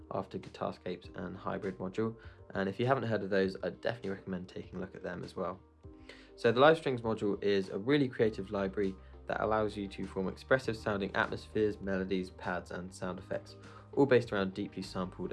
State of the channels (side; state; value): both; identical; correlation 1.00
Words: after Guitarscapes and Hybrid module, and if you haven't heard of those, I'd definitely recommend taking a look at them as well. So the Live Strings module is a really creative library that allows you to form expressive sounding atmospheres, melodies, pads and sound effects, all based around deeply sampled